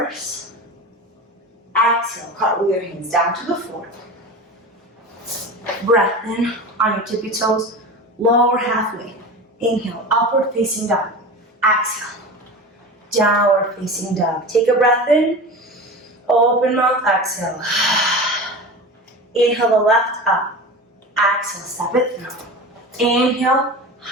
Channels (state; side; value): normal; both; correlation 0.30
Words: Exhale, cartwheel your hands down to the floor. Breath in on your tippy toes, lower halfway. Inhale, upward facing dog. Exhale, downward facing dog. Take a breath in, open mouth, exhale. Inhale the left up. Exhale, step it through. Inhale,